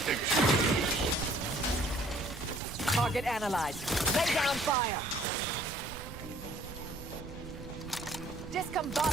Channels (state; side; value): noise; right; rumble, 12 dB below the sound